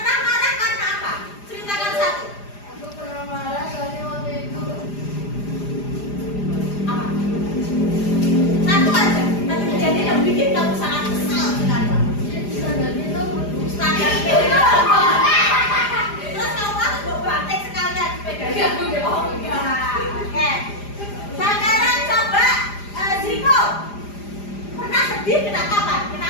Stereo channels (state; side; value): late; right; 4.9 ms